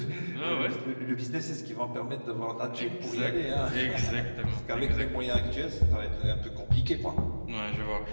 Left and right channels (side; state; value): both; inverted; correlation -1.00